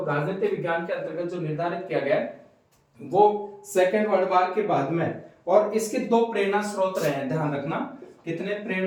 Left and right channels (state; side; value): identical; both; correlation 1.00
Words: राजनीति विज्ञान के अंतर्गत जो निर्धारित किया गया वो सेकेंड वर्ल्ड वार के बाद में, और इसके 2 प्रेरणा स्रोत रहे हैं, ध्यान रखना। कितने